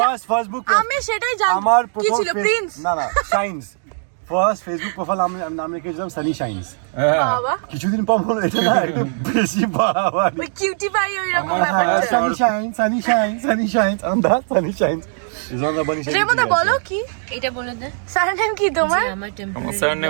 জান- ফার্স্ট বুক, আমি সেটাই জানি আমার কি প্রথম ছিল প্রিন্স না না সায়েন্স ফার্স্ট ফেসবুক প্রোফাইল আমি নাম রেখেছিলাম সানি শাইন্স। বাবা কিছুদিন পর বলো এটা না একটু বেশি বাড়াবাড়ি। ওই কিউটি পাই ওই রকম আমার ব্যাপার higher Sunny shines, sunny shines, sunny shines on the sunny shines. Is on the bunny shines. রেমতা বলো কি এটা বলে দে সারনেম কি তোমার যে আমার টেম্পোরারি আমার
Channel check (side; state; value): left; silent; digital silence